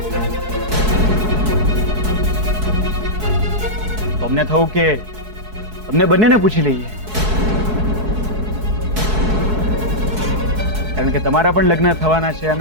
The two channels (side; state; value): left; late; 4.7 ms